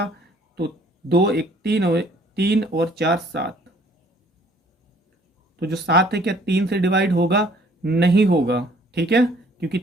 तो 2 × 3 और 4 7, तो जो 7 है क्या 3 से डिवाइड होगा, नहीं होगा, ठीक है, क्योंकि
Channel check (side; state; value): both; normal; correlation 0.58